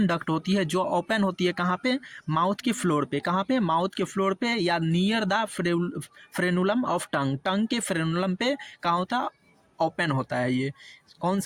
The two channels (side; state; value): both; identical; correlation 1.00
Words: डक्ट होती है, जो ओपन होती है कहाँ पे? माउथ के फ्लोर पे। कहाँ पे? माउथ के फ्लोर पे या near the frenulum of tongue. Tongue के फ्रेनुलम पे कहाँ होता? ओपन होता है। ये कौन